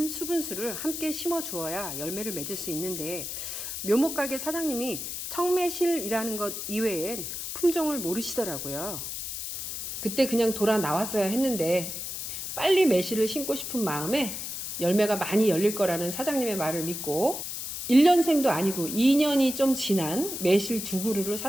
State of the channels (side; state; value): left; noise; hiss, 6 dB below the sound